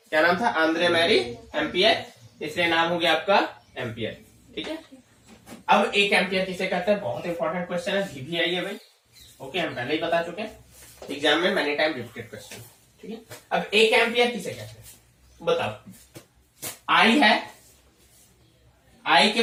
क्या नाम था, आंद्रे मैरी एम्पियर, इसलिए नाम हो गया आपका एम्पियर। ठीक है, अब एक एम्पियर किसे कहते हैं, बहुत इंपॉर्टेंट क्वेश्चन है, VVI है भाई। ओके, हम पहले ही बता चुके हैं, एग्जाम में मैनी टाइम रिपीटेड क्वेश्चन। ठीक है, अब एक एम्पियर किसे कहते हैं बताओ। आई है, आई के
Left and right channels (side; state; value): both; identical; correlation 1.00